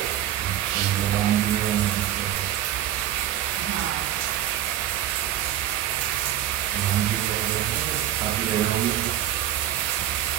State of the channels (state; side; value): quieter; left; 11.9 dB